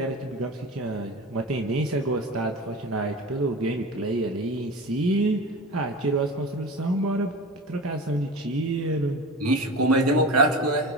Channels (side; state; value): both; normal; correlation 0.31